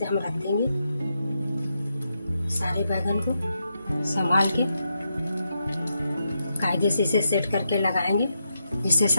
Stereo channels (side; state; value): both; inverted; correlation -0.84